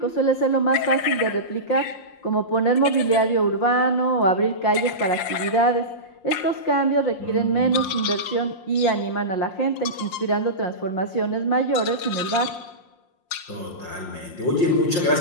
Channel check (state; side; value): late; right; 5.7 ms